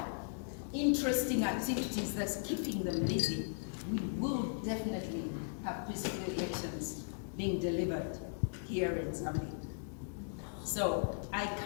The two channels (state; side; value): silent; right; digital silence